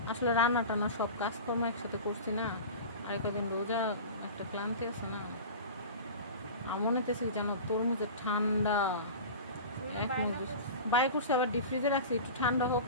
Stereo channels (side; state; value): both; inverted; correlation -0.33